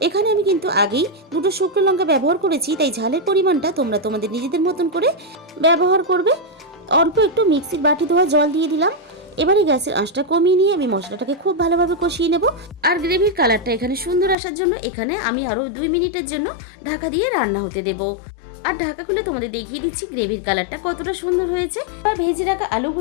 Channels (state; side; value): drops out; right; at 14.4 s